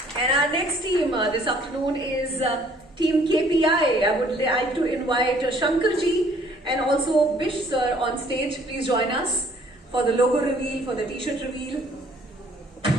And our next team this afternoon is Team KPI. I would like to invite Shankarji and also Bish sir on stage. Please join us for the logo reveal, for the t-shirt reveal. The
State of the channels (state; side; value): normal; both; correlation 0.60